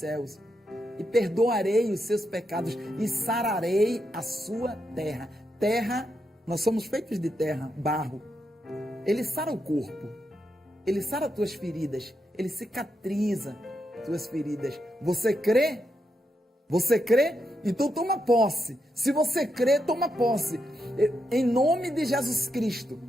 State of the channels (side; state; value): both; normal; correlation 0.83